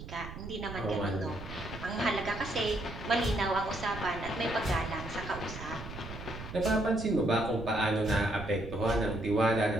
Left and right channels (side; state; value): right; noise; rumble, 11 dB below the sound